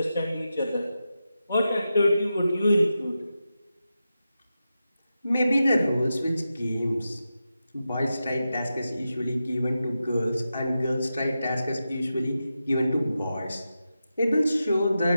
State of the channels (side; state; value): both; inverted; correlation -0.90